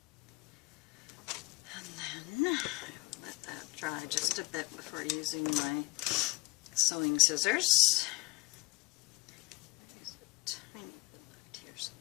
And then let that dry just a bit before using my sewing scissors. There's a tiny bit left here, so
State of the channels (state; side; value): quieter; right; 23.0 dB